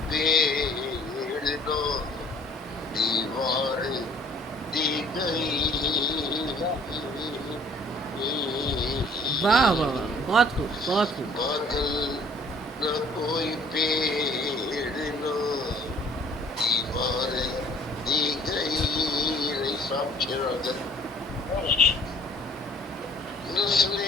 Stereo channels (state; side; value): normal; both; correlation 0.55